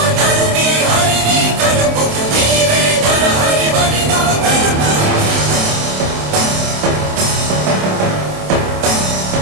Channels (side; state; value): left; late; 27 ms